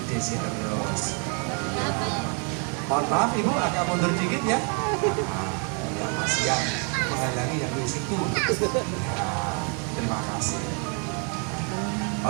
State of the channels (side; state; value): left; quieter; 38.3 dB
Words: Desi terus. Mohon maaf Ibu, agak mundur dikit ya. Ya, masih yang menghalangi yang di situ. Ya, terima kasih.